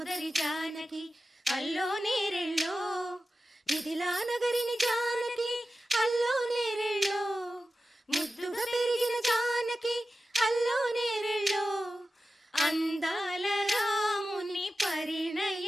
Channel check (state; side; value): normal; both; correlation 0.93